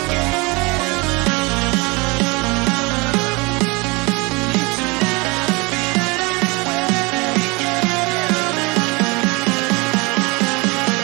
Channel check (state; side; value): quieter; left; 26.8 dB